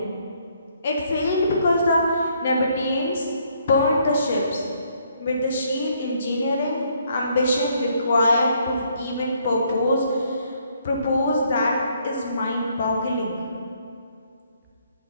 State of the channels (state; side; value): inverted; both; correlation -0.69